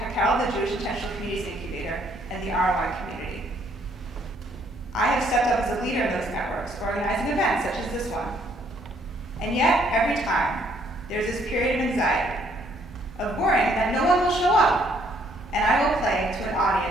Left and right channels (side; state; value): both; normal; correlation 0.66